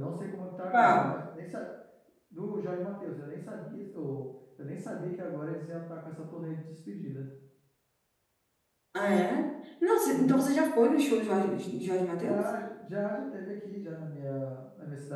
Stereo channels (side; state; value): both; identical; correlation 1.00